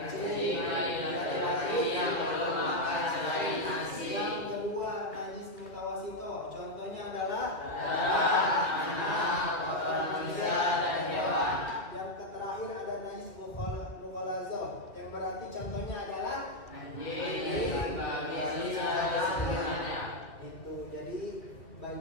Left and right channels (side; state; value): right; late; 2.1 ms